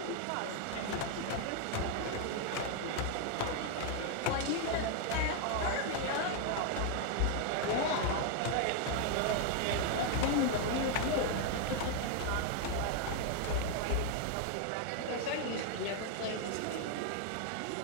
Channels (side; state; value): both; different; correlation 0.00